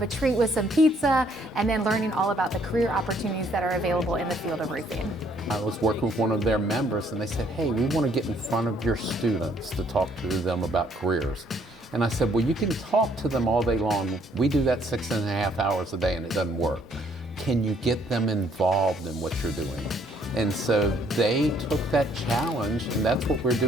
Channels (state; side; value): normal; both; correlation 0.65